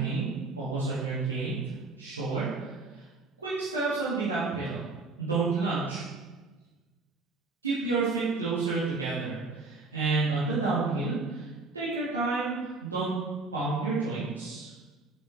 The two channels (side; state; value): left; quieter; 3.5 dB